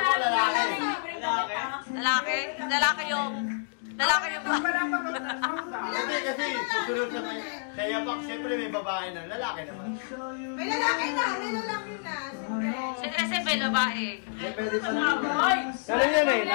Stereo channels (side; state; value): right; silent; digital silence